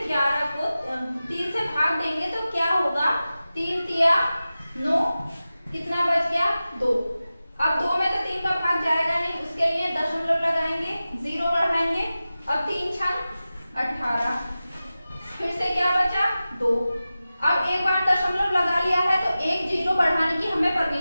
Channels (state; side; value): inverted; both; correlation -0.95